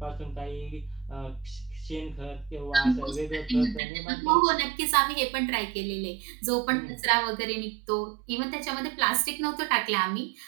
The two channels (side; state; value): left; drops out; at 3.8 s